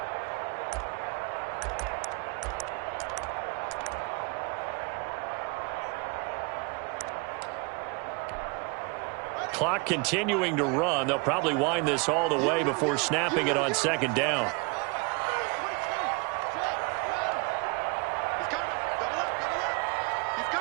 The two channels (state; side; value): quieter; left; 31.0 dB